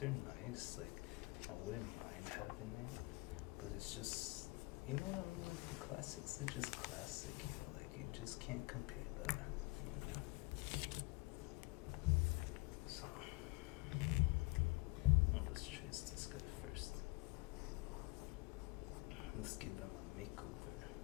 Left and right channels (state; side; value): quieter; right; 25.0 dB